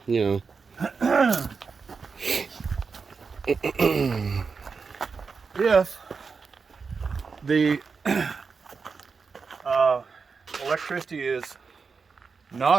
you know. If the electricity is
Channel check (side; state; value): left; quieter; 5.1 dB